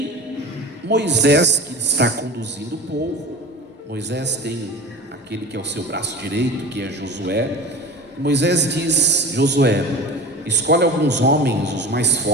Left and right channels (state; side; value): normal; both; correlation 0.36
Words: Moisés, que está conduzindo o povo, Moisés tem aquele que é o seu braço direito, que é Josué. Moisés diz: Josué, escolhe alguns homens, os mais